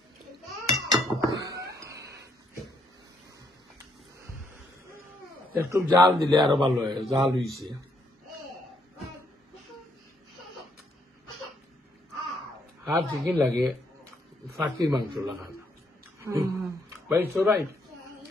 একটু জাল দিলে আরো ভালো হয় জাল হয়েছে হাফ চিকেন লাগে ফাঁকির মাংস লাগানো ভাই সবাই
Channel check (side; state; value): both; normal; correlation 0.72